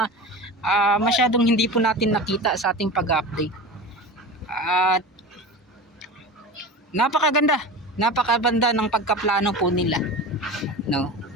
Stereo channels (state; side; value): normal; both; correlation 0.31